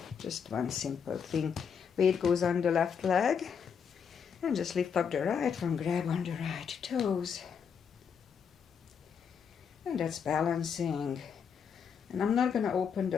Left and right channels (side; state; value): right; quieter; 6.9 dB